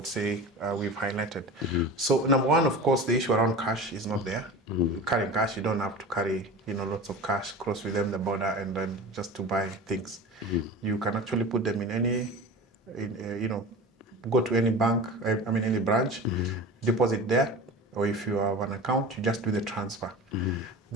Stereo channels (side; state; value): both; normal; correlation 0.33